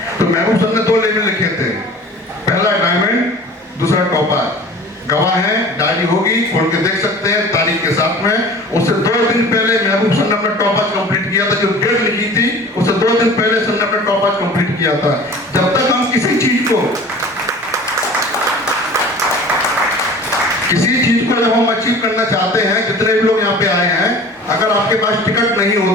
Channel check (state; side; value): normal; both; correlation 0.43